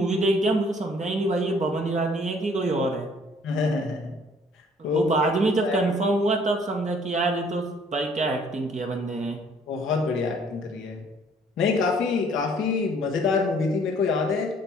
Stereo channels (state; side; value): normal; both; correlation 0.59